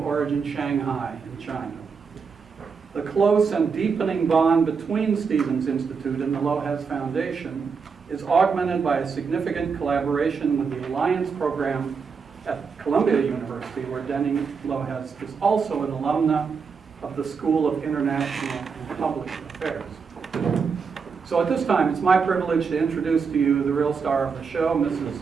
Shanghai, in China. The close and deepening bond between Stevens Institute and the Lohez Foundation is augmented by a significant collaboration with the Alliance program at Columbia University, where Denning Lohez is also an alumna of the School of International and Public Affairs. So at this time, it's my privilege to introduce to you the real star of the show, Mrs.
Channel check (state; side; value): quieter; left; 5.6 dB